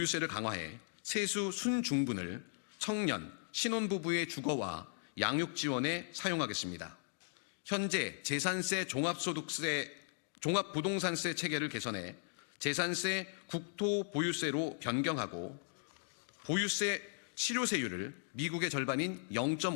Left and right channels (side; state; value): right; silent; digital silence